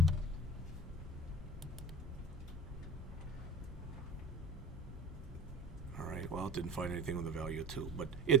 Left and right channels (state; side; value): normal; both; correlation 0.37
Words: All right, well, it didn't find anything with a value of 2, but